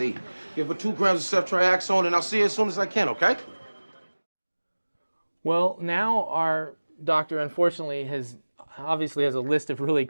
Give her 2 grams of ceftriaxone, and I'll see her as soon as I can, okay? Well, now our doctor, unfortunately, obviously has a list of really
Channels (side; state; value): both; inverted; correlation -1.00